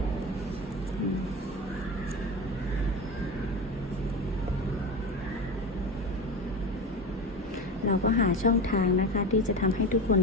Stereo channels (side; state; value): both; normal; correlation 0.26